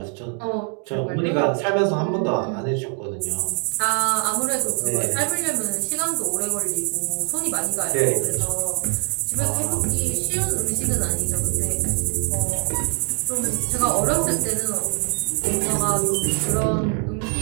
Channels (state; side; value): quieter; left; 33.5 dB